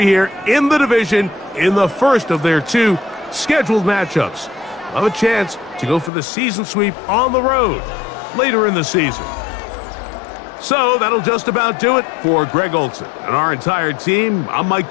here in the division in the first of their two scheduled matchups. Have a chance to go for the season sweep on the road later in the season. So that'll just about do it for Greg Olson and our entire team. I'm Mike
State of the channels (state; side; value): drops out; right; at 6.1 s